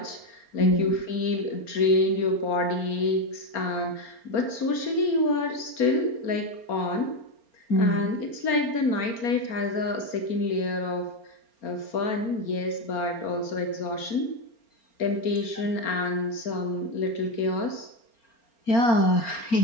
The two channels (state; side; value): late; right; 4.3 ms